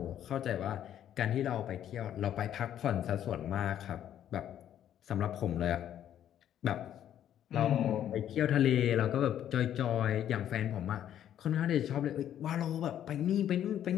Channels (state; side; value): quieter; right; 10.6 dB